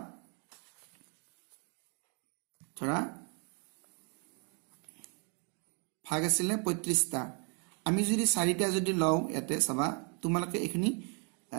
ধৰা ভাগ আছিলে 35টা, আমি যদি 4টা যদি লওঁ, ইয়াতে চাবা তোমালোকে এইখিনি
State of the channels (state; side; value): quieter; left; 37.7 dB